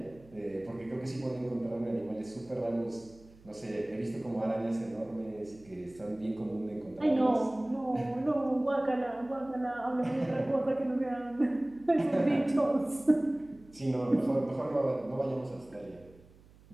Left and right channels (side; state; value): right; noise; hum, 25 dB below the sound